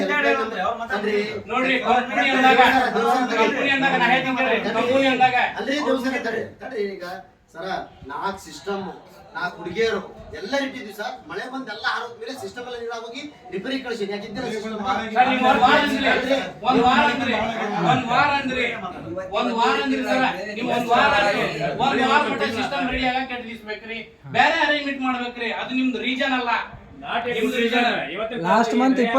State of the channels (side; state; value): both; identical; correlation 1.00